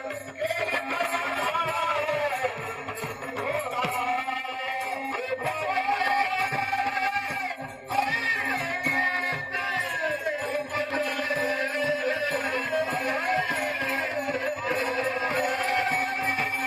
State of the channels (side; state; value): both; identical; correlation 1.00